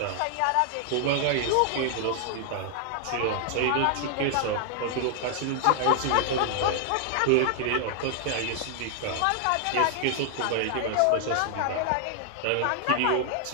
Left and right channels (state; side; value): different; both; correlation 0.00